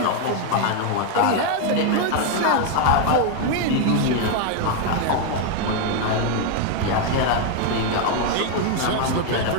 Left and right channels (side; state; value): both; different; correlation 0.01